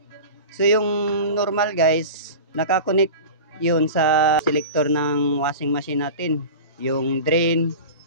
So yung normal guys, nakakonect yun sa selector ng washing machine natin, yung drain,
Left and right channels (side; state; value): both; inverted; correlation -0.33